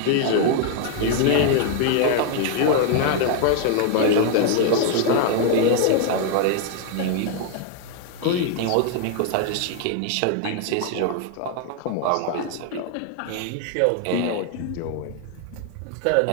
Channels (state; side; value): different; both; correlation 0.00